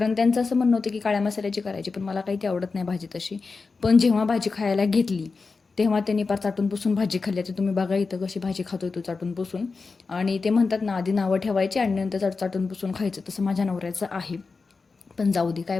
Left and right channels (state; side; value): quieter; right; 4.4 dB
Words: त्यांचं असं म्हणणं होतं की काळ्या मसाल्याची करायची, पण मला काही ती आवडत नाही भाजी तशी. पण जेव्हा भाजी खायला घेतली तेव्हा त्यांनी पार चाटून पुसून भाजी खाल्ली. तर तुम्ही बघा इथं कशी भाजी खातोय तो चाटून पुसून. आणि ते म्हणतात ना, आधी नावं ठेवायची आणि नंतर चाटून पुसून खायचं, तसं माझ्या नवऱ्याचं आहे. पण जाऊ दे, काय